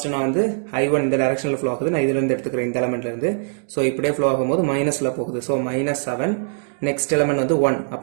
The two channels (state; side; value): silent; left; digital silence